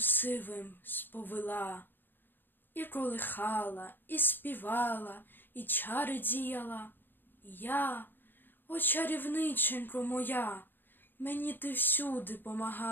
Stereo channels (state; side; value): late; right; 0.096 ms